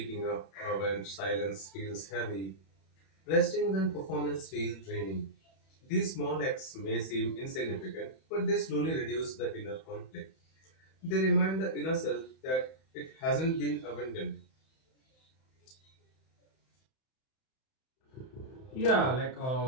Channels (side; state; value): right; late; 31 ms